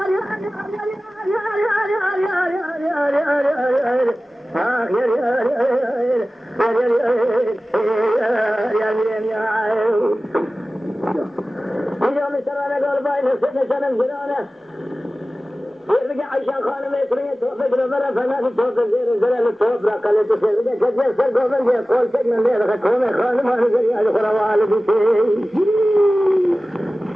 عشان خانم يكريه توفق ربنا فما في توفق غير الزلال التوفق قال تسير بدك كذا سر قومن دي قول سجن من غير خكومه خانم انا جري على خروال دي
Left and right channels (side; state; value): both; normal; correlation 0.96